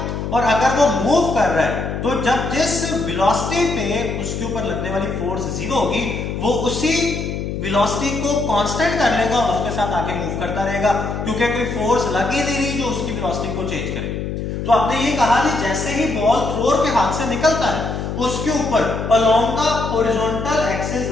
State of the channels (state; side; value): noise; left; hum, 4 dB below the sound